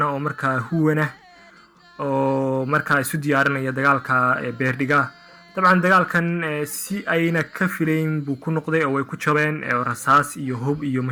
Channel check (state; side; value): identical; both; correlation 1.00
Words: oo markaa huwana oo markaa isu diyaarinaya dagaalka Beerdhiga. dabcan dagaalkan si ayna ka filayn buu ku noqday oo way ku jabeen rasaas iyo hub iyo